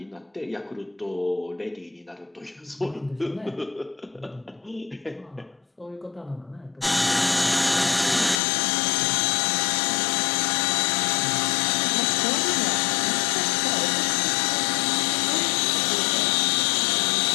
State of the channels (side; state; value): right; drops out; at 8.4 s